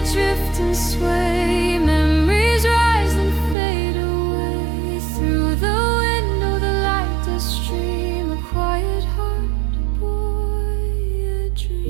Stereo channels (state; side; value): drops out; left; at 3.6 s